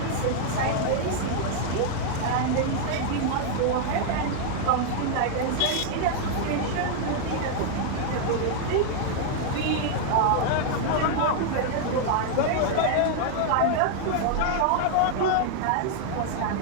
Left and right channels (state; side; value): different; both; correlation 0.00